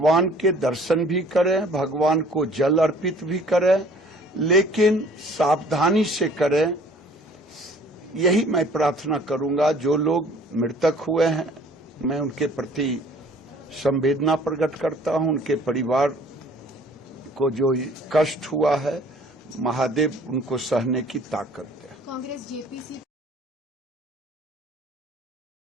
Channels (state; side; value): normal; both; correlation 0.53